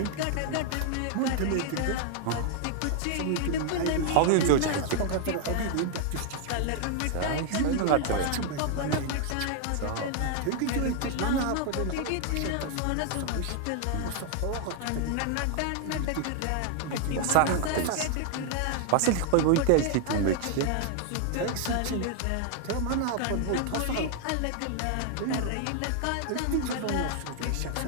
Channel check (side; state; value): both; different; correlation 0.00